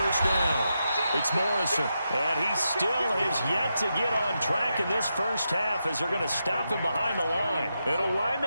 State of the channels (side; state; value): both; inverted; correlation -0.86